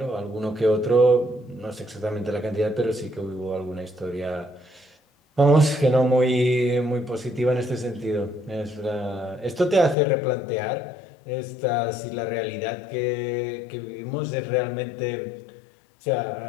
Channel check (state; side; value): drops out; right; at 10.0 s